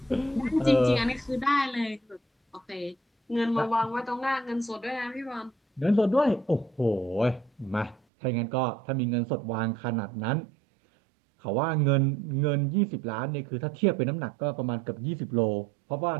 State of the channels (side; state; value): left; drops out; at 8.0 s